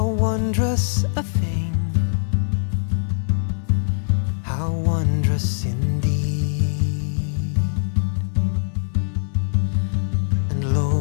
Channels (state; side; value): silent; right; digital silence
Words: wondrous a thing, how wondrous indeed. And